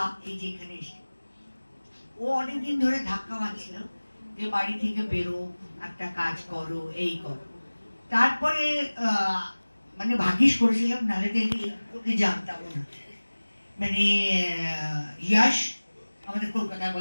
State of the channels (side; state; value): both; inverted; correlation -1.00